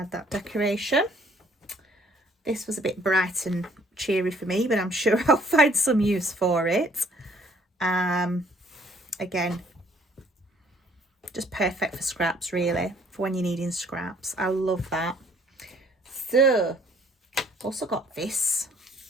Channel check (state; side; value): normal; both; correlation 0.61